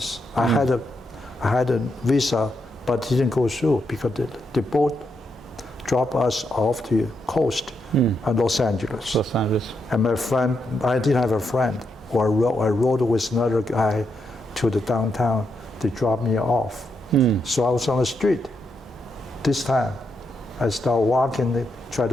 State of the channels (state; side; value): normal; both; correlation 0.81